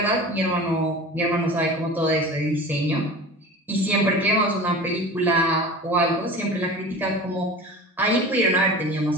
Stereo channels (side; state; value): both; normal; correlation 0.36